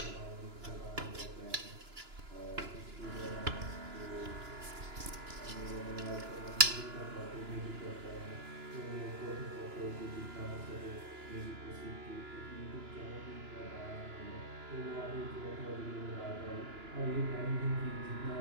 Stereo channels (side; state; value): left; late; 2.9 ms